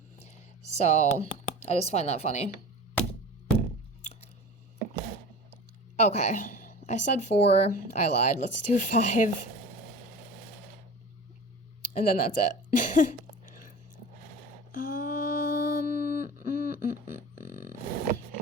So, I just find that funny. Okay, I said 4. I lied. Let's do 5. And then that's it.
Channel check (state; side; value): normal; both; correlation 0.36